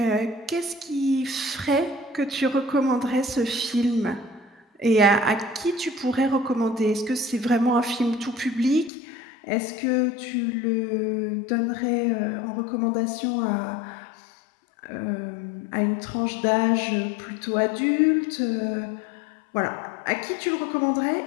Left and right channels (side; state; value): right; drops out; at 8.9 s